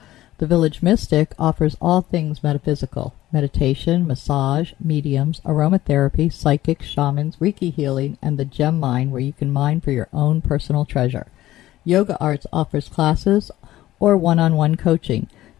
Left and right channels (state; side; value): quieter; right; 15.0 dB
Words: The Village Mystic offers all things metaphysical: meditation, massage, mediums, aromatherapy, psychics, shamans, Reiki healing, and the gem mine, where you can mine for your own personal treasure. Yoga Arts offers classes or one-on-one coaching.